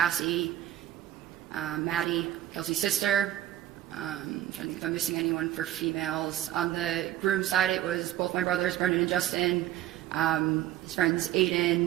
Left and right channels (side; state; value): left; quieter; 13.0 dB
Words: Maddie, Kelsey's sister. I'm trying to think if I'm missing anyone for females. On the groom's side, it was both my brothers, Brendan and Justin, his friends